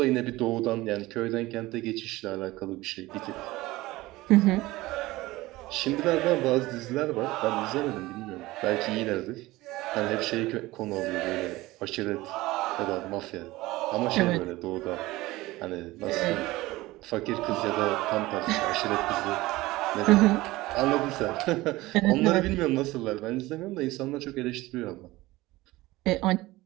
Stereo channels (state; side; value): quieter; left; 19.0 dB